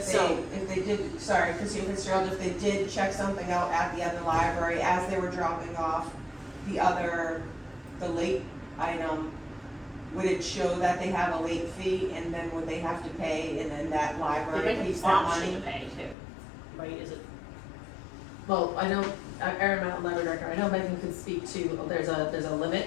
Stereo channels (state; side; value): drops out; right; at 16.2 s